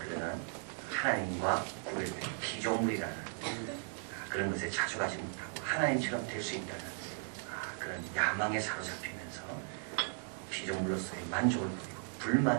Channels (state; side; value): silent; left; 53 dB below the other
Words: 하나님과 구별된 피조물이라는 그런 것에 자족하지 못하고 하나님처럼 될 수 있다는 그런 야망에 사로잡히면서 피조물로서의 만족을 부리고